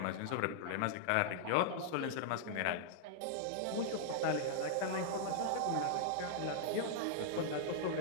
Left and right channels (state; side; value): different; both; correlation -0.01